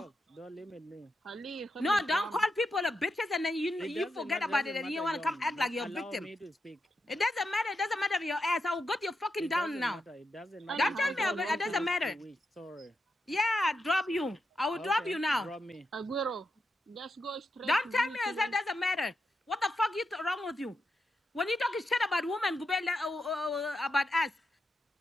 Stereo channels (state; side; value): normal; both; correlation 0.85